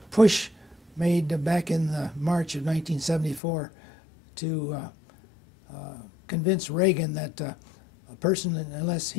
push made back in March of 1974 to convince Reagan that a person, unless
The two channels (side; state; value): right; drops out; at 3.4 s